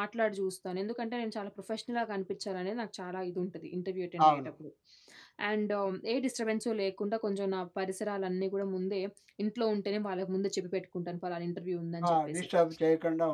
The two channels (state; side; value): identical; both; correlation 1.00